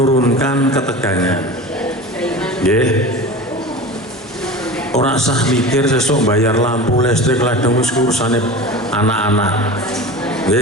ketegangan. Nggih. Ora sah mikir sesuk bayar lampu listrik ladang wis urusane anak-anak.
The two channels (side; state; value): both; normal; correlation 0.33